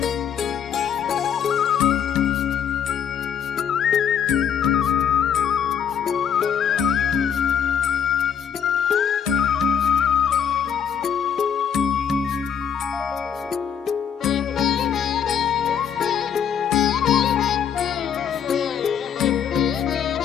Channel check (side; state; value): right; quieter; 8.2 dB